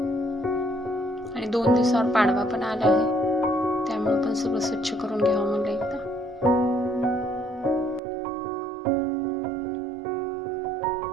आणि 2 दिवसावर पाडवा पण आला आहे, त्यामुळे पण सगळं स्वच्छ करून घ्यावं म्हणलं एकदा.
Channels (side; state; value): left; drops out; at 8.0 s